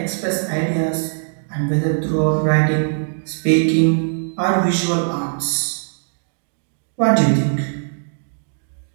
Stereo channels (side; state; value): left; silent; digital silence